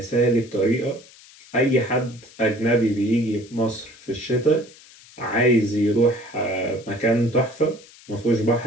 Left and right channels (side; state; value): left; noise; hiss, 23 dB below the sound